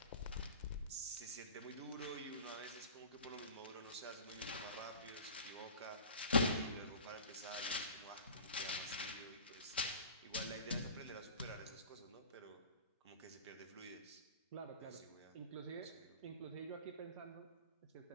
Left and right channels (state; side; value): inverted; both; correlation -0.41